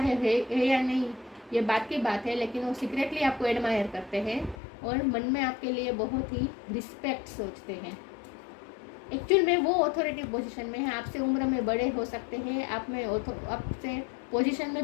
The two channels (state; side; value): drops out; right; at 4.5 s